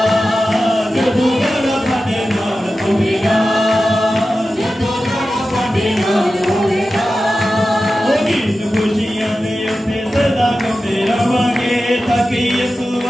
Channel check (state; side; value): normal; both; correlation 0.93